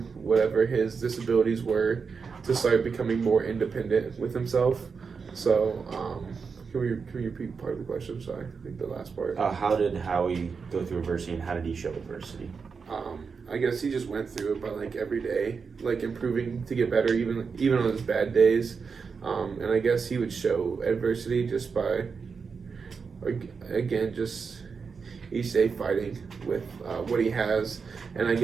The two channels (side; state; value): left; quieter; 5.4 dB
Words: whatever his disabilities were, to start becoming more independent with himself. So, can we repeat part of the question? Sorry, I think the last part. How did Howie go through adversity and how did he show adversity? I guess he just went through it by like every day, like improving to get better, even on his bad days. And I guess he would show adversity just by, again, just each day fighting with what he has. And I